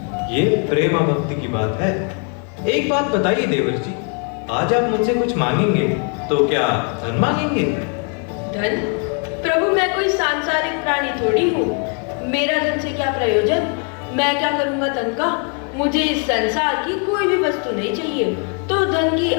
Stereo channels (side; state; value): right; quieter; 40.0 dB